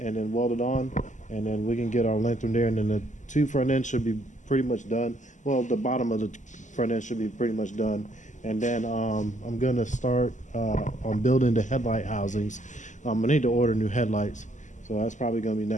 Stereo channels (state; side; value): late; right; 0.36 ms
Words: then weld it on, and then we can get our length from there. And then the two front ends should be pretty much done. Well, the bottom of the front end should be pretty much done. And then I'm gonna start on building the headlight housings. I need to order new headlights, so that's probably gonna be